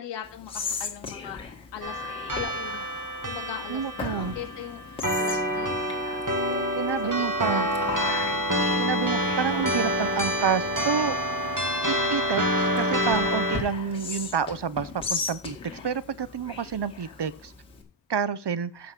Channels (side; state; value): both; normal; correlation 0.01